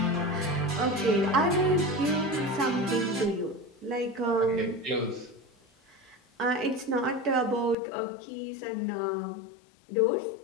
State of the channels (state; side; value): drops out; right; at 7.8 s